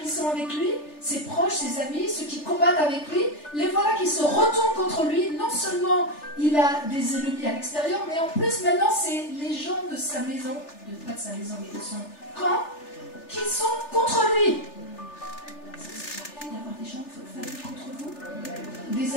qui sont avec lui, ses proches, ses amis, ceux qui combattent avec lui, les voilà qui se retournent contre lui. Non seulement il a des ennemis à l'extérieur, mais en plus maintenant c'est les gens de sa maison, pas de sa maison, mais de son camp, qui sont contre lui. Ça arrive d'avoir des gens de votre famille contre vous,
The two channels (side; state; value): right; late; 3.4 ms